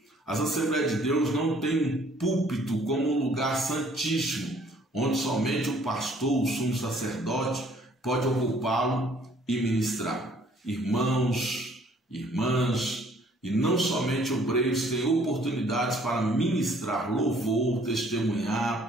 As Assembleias de Deus não têm um púlpito como um lugar santíssimo, onde somente o pastor, o sumo sacerdote, pode ocupá-lo e ministrar. Irmãos, irmãs, e não somente obreiros têm oportunidades para ministrar louvor, testemunhar,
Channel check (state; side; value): normal; both; correlation 0.60